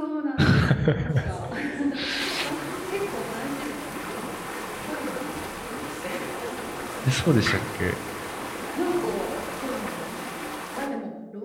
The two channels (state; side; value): identical; both; correlation 1.00